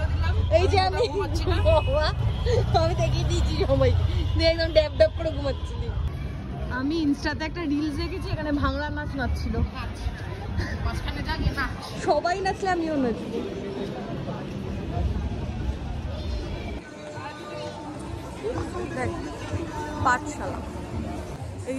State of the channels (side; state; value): both; identical; correlation 1.00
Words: দিলাম এই যে আমি দেখিয়ে দিয়েছি সবাই, একদম ড্যাব করে ঘুমাচ্ছিলি। আমি ইনস্টাতে একটা রিলস দেখেছি, এখানে ভাঙড়া নাচ নাচছিল, সবাই নাচলে আমিও নাচবো। দেখ পাঠশালা, এই